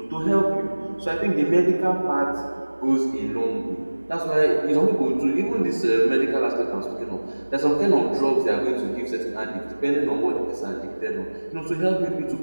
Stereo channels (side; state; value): both; inverted; correlation -1.00